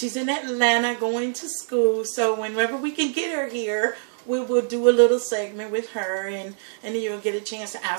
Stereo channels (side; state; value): left; silent; digital silence